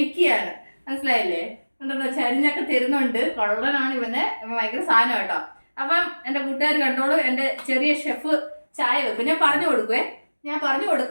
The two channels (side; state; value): both; inverted; correlation -1.00